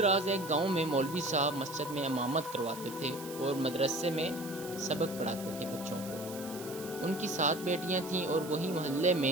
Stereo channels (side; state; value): right; noise; hiss, 14 dB below the sound